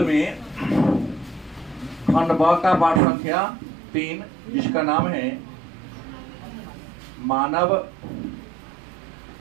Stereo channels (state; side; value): drops out; left; at 3.0 s